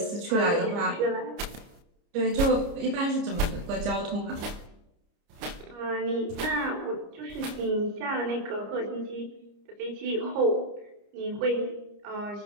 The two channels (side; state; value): left; late; 29 ms